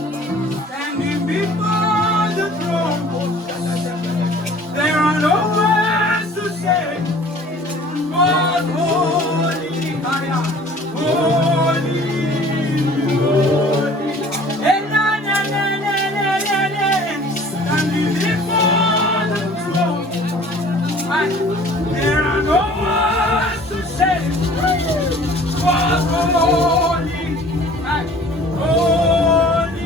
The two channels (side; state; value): both; normal; correlation 0.49